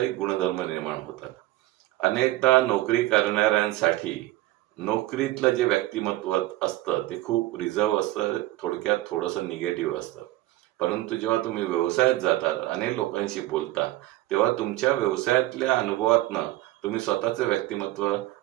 गुणधर्म निर्माण होतात. अनेकदा नोकरी करणाऱ्यांसाठी नोकरीतलं जे व्यक्तिमत्व असतं ते खूप रिझर्व असतं, थोडक्यात थोडंसं निगेटिव्ह असतं. परंतु जेव्हा तुम्ही व्यवसायात जाता, अनेक लोकांशी बोलता, तेव्हा तुमच्या व्यवसायातल्या अनुभवातनं तुम्ही स्वतःचं व्यक्तिमत्व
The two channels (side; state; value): left; quieter; 16.9 dB